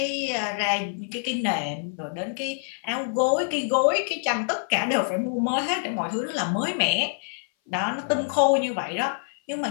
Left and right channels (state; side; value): silent; right; 58 dB below the other